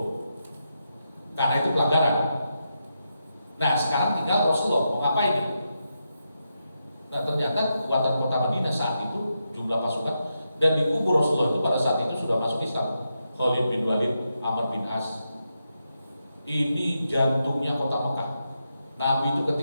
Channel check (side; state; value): both; inverted; correlation -0.85